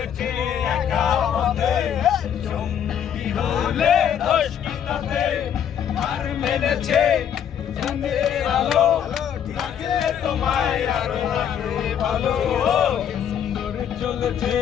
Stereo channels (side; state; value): right; quieter; 9.0 dB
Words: একা পথে, সঙ্গী হলে দোষ কি তাতে, আর মেনেছে চাঁদের আলো, লাগলে তোমায় আরো লাগবে ভালো, সুন্দর চলেছে